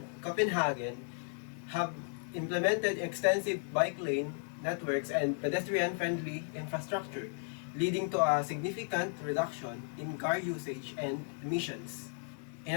Copenhagen have implemented extensive bike lane networks and pedestrian-friendly infrastructure, leading to a significant reduction in car usage and emissions. In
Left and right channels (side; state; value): right; silent; 55 dB below the other